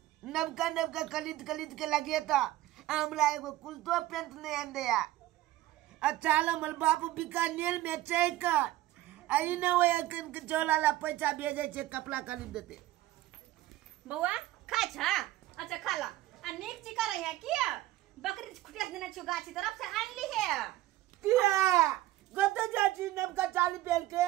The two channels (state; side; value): quieter; left; 16.0 dB